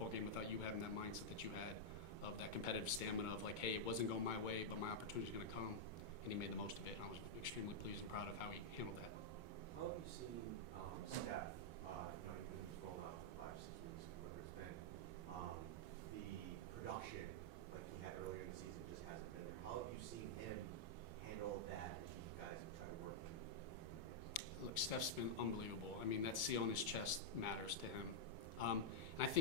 game without you having that mindset that you had of that competitive stamina of like, hey, it wasn't going my way, but my opportunity is going to come. And he made the most of it. And I was extremely pleased and proud of how he handled that. How have you seen Steph, you've been rolling out for 5, 6 weeks, whatever it's been, the production like he had earlier in the season just hasn't been there. How have you seen him handle that as you guys try to work him? Look, Steph's been unbelievable. I mean, that C on his chest matters to him. And I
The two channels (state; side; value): late; right; 2.2 ms